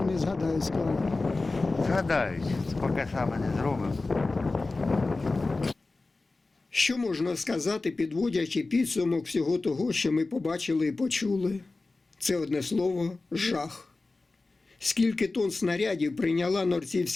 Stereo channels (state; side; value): quieter; right; 3.4 dB